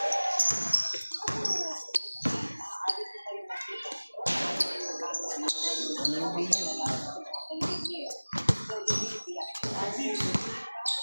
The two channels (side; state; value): both; inverted; correlation -1.00